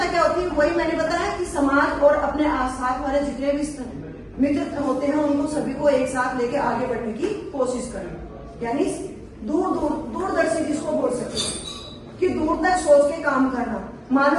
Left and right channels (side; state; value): both; identical; correlation 1.00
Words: क्या होती है, वही मैंने बताया कि समाज और अपने आसपास वाले जितने भी मित्र होते हैं उनको सभी को एक साथ लेके आगे बढ़ने की कोशिश करें। यानी दूरदर्शी जिसको बोल सकते हैं कि दूर तक सोच के काम करना। मान